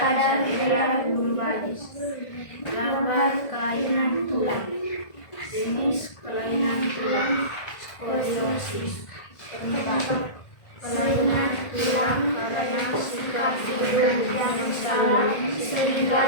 daerah lumbalis. Gambar kelainan tulang. Jenis kelainan tulang skoliosis. Penyebab kelainan tulang karena sikap duduk yang salah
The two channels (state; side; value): late; right; 1.6 ms